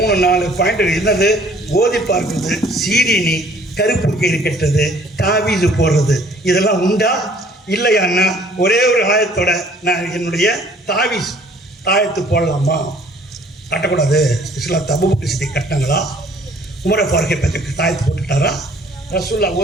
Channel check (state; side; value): normal; both; correlation 0.57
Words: பாயிண்ட் என்னது, ஓதி பார்க்கிறது, சீரினி, கருப்பு கயிறு கட்டுறது, தாவீது போடுறது, இதெல்லாம் உண்டா இல்லையான்னா ஒரே ஒரு ஆயத்தோட நான் என்னுடைய தாயத்து போடலாமா, கட்டக்கூடாது. இஸ்லாம் அபூபக்கர் சித்திக் கட்டினாங்களா, உமர் ஃபாரூக் பற்றி தாயத்து போட்டுட்டாரா, ரசூல்லா